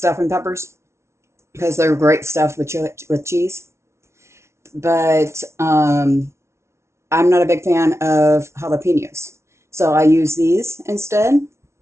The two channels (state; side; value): late; left; 0.13 ms